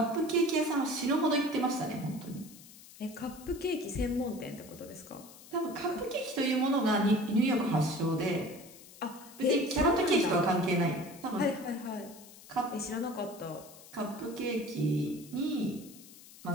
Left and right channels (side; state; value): left; noise; hiss, 19 dB below the sound